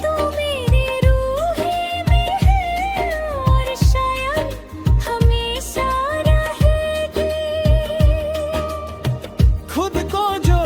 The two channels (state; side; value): identical; both; correlation 1.00